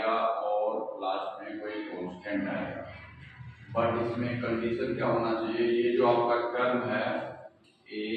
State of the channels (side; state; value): both; identical; correlation 1.00